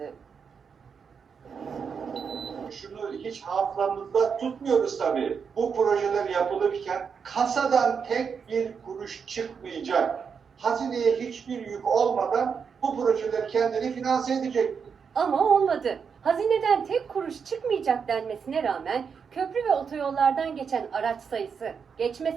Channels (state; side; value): quieter; left; 6.3 dB